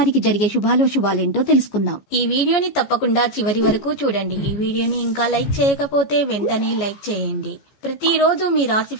జరిగే శుభాలేంటో తెలుసుకుందాం. ఈ వీడియోని తప్పకుండా చివరి వరకు చూడండి. ఈ వీడియోని ఇంకా లైక్ చేయకపోతే వెంటనే లైక్ చేయండి. ప్రతిరోజు మీ రాశి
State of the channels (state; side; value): late; right; 14 ms